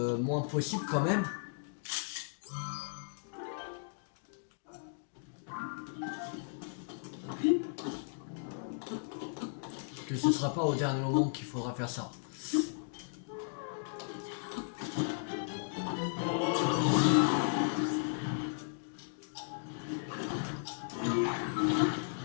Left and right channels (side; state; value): right; silent; digital silence